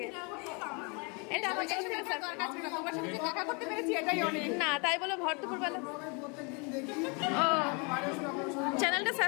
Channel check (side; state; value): right; quieter; 32.9 dB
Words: এটা আমার তরফ থেকে দরকার ছিল, তোমার সাথে দেখা করতে পেরেছি এটাই অনেক। না, তাই বলে ভর দুপুর বেলা। ও, চ্যানেলটা